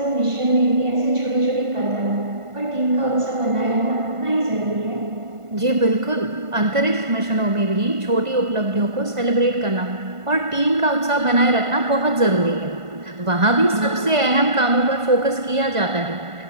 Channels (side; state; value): left; late; 1.5 ms